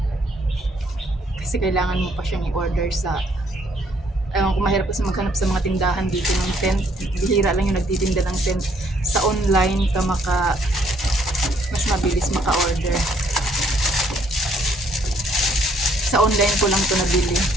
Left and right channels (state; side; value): normal; both; correlation 0.66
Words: Kasi kailangan mo pa siyang i-order sa... Ewan ko, mahirap kasi maghanap sa mga tindahan dito ng tent. Bihira lang yung nagtitinda ng tent. Sa online ka mas mabilis maka-order. Sa online ko lang to nabili.